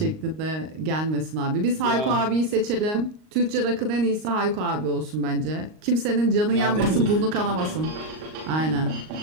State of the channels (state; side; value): late; left; 38 ms